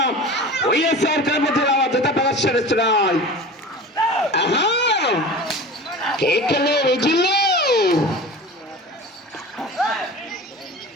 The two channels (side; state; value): both; normal; correlation 0.35